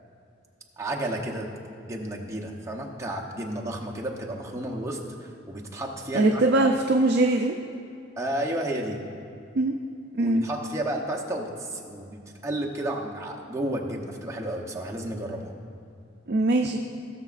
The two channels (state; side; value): normal; both; correlation 0.48